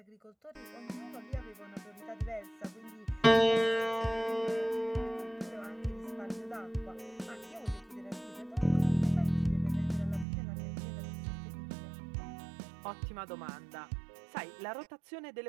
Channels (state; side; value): drops out; left; at 10.2 s